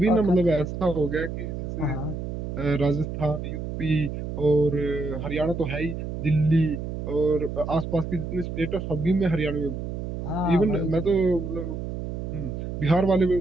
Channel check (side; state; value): right; noise; hum, 5 dB below the sound